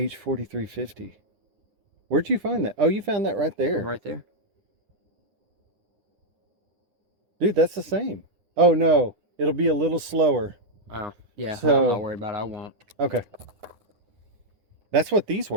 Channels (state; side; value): late; left; 9.8 ms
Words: Where'd you find that? Oh, you found that right there. Right there. Dude, that's the same. Oh, no. It'll be a little slower. Oh, yeah. So, I'm not worried about it. I won't. Okay. That's what these